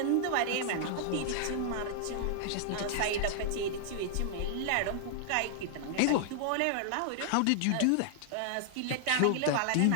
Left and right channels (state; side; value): different; both; correlation -0.01